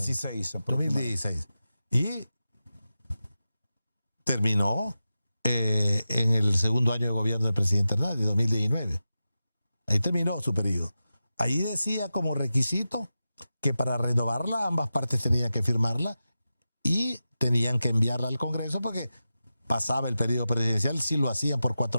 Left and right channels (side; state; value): both; inverted; correlation -0.92